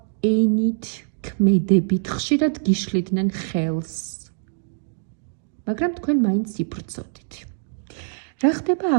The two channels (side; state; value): left; silent; digital silence